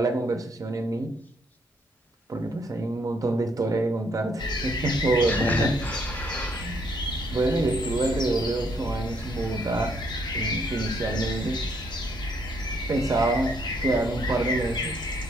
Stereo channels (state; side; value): normal; both; correlation 0.70